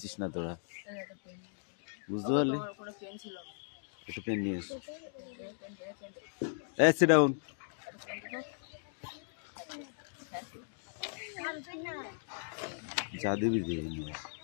না তোরা, বুঝতে পারলি? একটু পেন নিয়ে এসো। Sit down. যা দিবি দিয়ে নিয়ে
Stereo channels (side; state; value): right; silent; digital silence